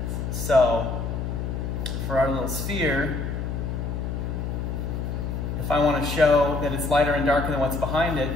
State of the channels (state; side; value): noise; left; hum, 3 dB below the sound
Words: So for our little sphere, if I want to show that it's lighter and darker than what's behind it,